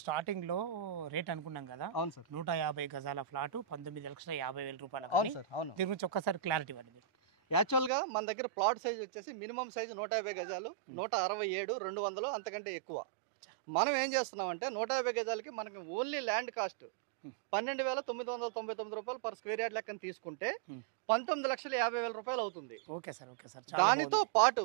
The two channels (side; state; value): left; drops out; at 7.9 s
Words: స్టార్టింగ్ లో రేట్ అనుకున్నాం కదా. అవును సార్. 150 గజాల ఫ్లాట్ 19,50,000 రూపాయలు. అవును సార్, అవును. దీని గురించి ఒక్కసారి క్లారిటీ ఇవ్వండి. యాక్చువల్గా మన దగ్గర ప్లాట్ సైజ్ వచ్చేసి మినిమం సైజు 150 గజాలు, 167, 200 అంతకంటే ఎక్కువ. మనం ఏం చేస్తున్నామంటే 150 గజాలకి మనకి ఓన్లీ ల్యాండ్ కాస్ట్ 12,999 రూపాయలు పర్ స్క్వేర్ యార్డ్ లెక్కన తీసుకుంటే 19,50,000 రూపాయలు అవుతుంది. Okay sir, okay sir. దానితో పాటు